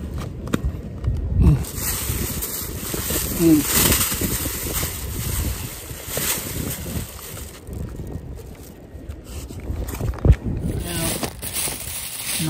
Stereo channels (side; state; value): both; identical; correlation 1.00